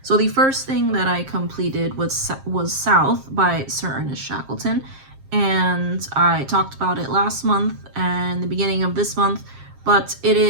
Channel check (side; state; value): left; late; 7.5 ms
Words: So the first thing that I completed was South by Sir Ernest Shackleton, and I talked about it last month and the beginning of this month, but it